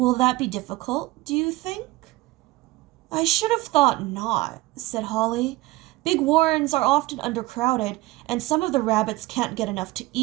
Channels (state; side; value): quieter; left; 19.3 dB